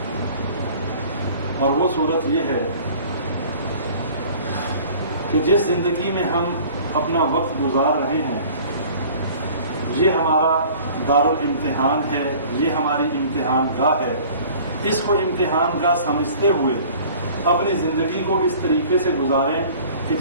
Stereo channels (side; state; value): both; inverted; correlation -0.48